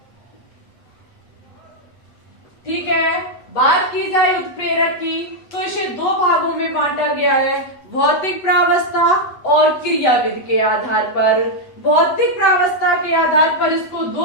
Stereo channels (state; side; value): late; right; 8.0 ms